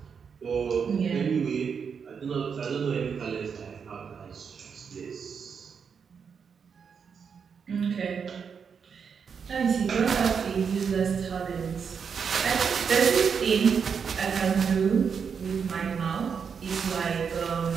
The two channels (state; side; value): quieter; left; 6.4 dB